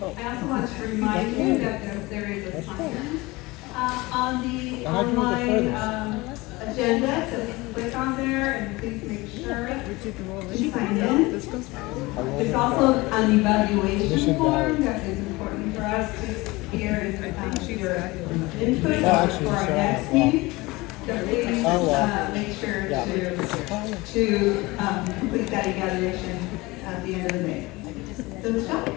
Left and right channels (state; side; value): quieter; right; 22.1 dB